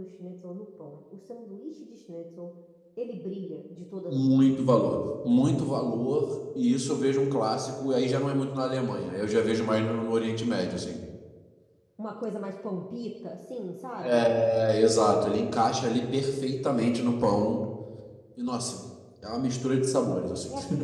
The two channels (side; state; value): both; identical; correlation 1.00